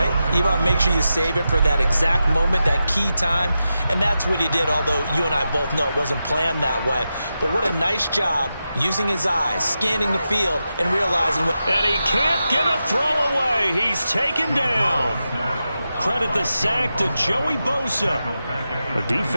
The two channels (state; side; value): inverted; both; correlation -0.90